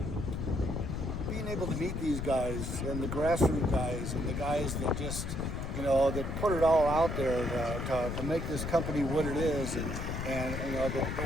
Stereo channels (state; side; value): noise; left; rumble, 4 dB below the sound